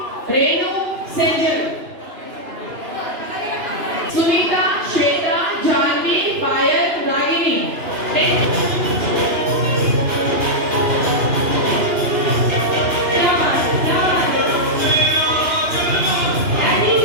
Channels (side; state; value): left; late; 2.9 ms